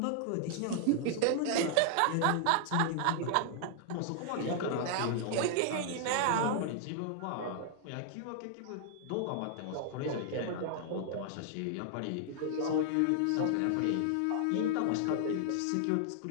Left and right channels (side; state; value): both; different; correlation -0.01